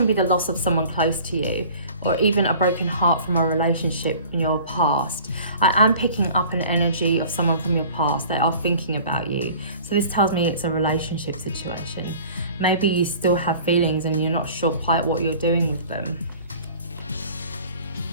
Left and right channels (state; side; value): inverted; both; correlation -0.46